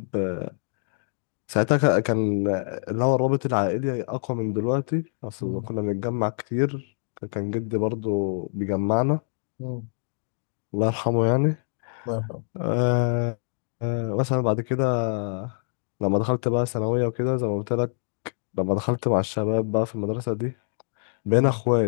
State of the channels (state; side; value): silent; right; digital silence